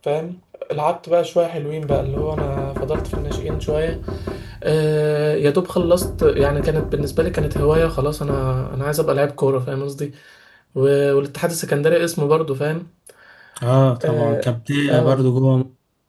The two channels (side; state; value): both; identical; correlation 1.00